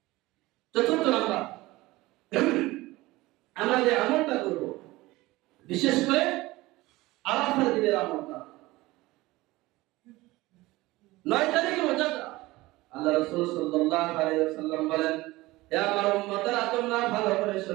চতুর্থ নাম্বার, আমরা যে আমলটা করব, বিশেষ করে আরাফার দিনের আমলটা, 9 তারিখে রোজাটা আল্লাহ রাসূল সাল্লাল্লাহু আলাইহি ওয়াসাল্লাম বলেন, হে আমার উম্মতরা, তোমরা ভালো করে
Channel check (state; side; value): quieter; left; 19.6 dB